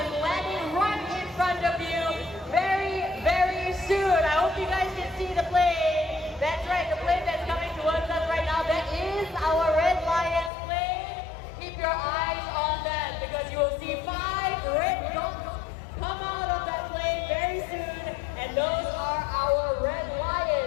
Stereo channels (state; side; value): drops out; right; at 10.5 s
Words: landing right in front of you very, very soon. I hope you guys can see the plane. That's right, the plane that's coming towards us right now, that is our Red Lions plane. Keep your eyes on that because you will see 5 red dots come out of that plane very soon. And those are our Red